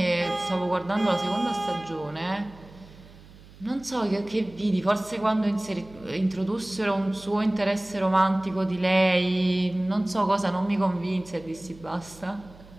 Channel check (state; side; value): noise; right; hum, 21 dB below the sound